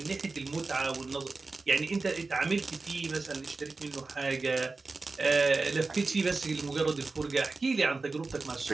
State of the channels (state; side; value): quieter; left; 3.8 dB